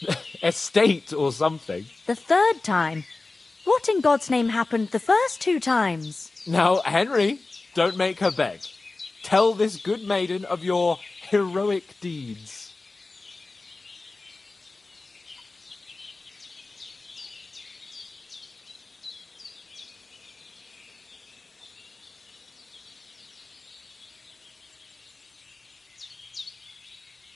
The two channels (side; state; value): right; quieter; 3.5 dB